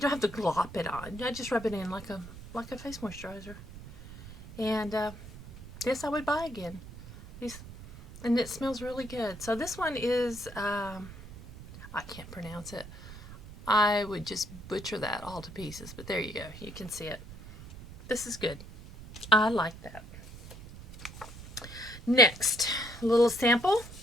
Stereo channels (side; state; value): right; noise; rumble, 15 dB below the sound